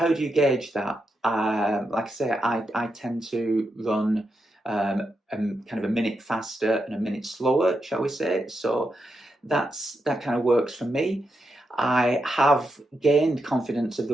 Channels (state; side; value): normal; both; correlation 0.85